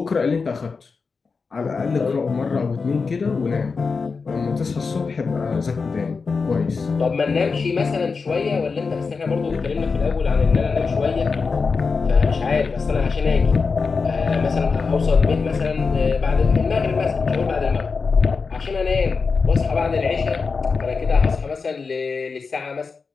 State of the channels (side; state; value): right; quieter; 4.8 dB